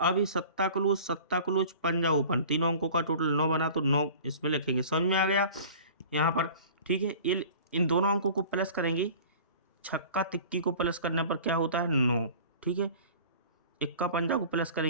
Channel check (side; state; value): both; inverted; correlation -0.43